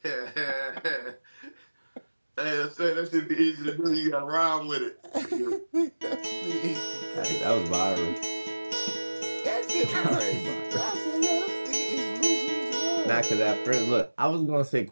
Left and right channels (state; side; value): inverted; both; correlation -1.00